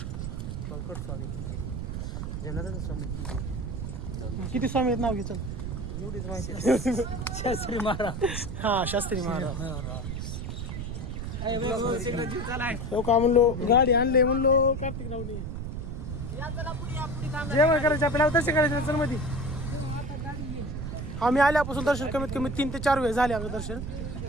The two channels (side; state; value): right; noise; rumble, 5 dB below the sound